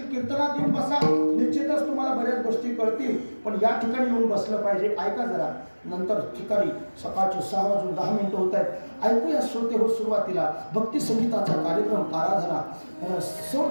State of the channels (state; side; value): inverted; both; correlation -1.00